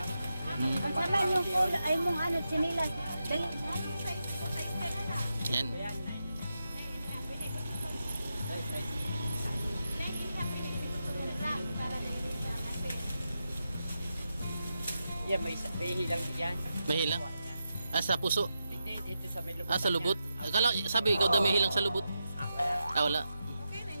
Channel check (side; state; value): both; inverted; correlation -0.88